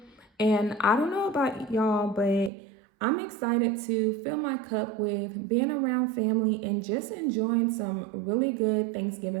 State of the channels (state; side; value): drops out; left; at 2.5 s